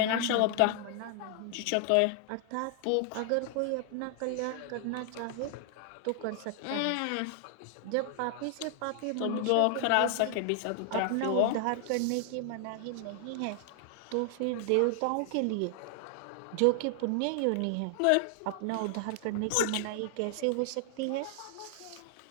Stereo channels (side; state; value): both; different; correlation 0.00